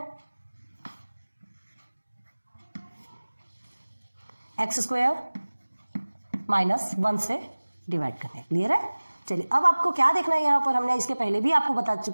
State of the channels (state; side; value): inverted; both; correlation -1.00